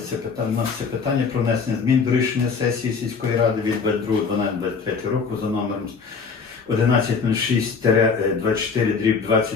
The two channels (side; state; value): right; quieter; 5.3 dB